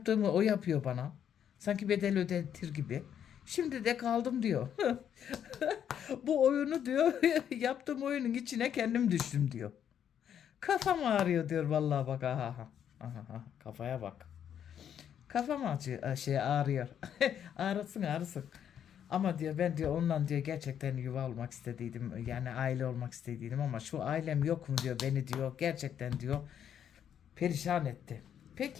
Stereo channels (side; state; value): right; quieter; 9.1 dB